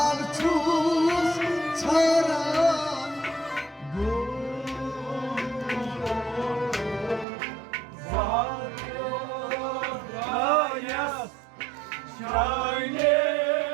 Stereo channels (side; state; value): left; drops out; at 7.2 s